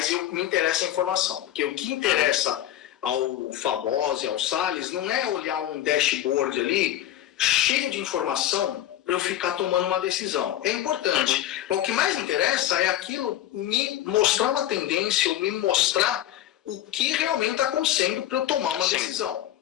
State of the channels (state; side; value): quieter; right; 12.8 dB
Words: me interessa a informação, porque o que interessa ao Famosi, ao Salles, não é olhar um dashboard ali cheio de informação para eu ficar tomando uma decisão. É importante. O que mais interessa é aquilo me mostrar uma tendência, ou me mostrar o que realmente está acontecendo para eu tomar uma decisão.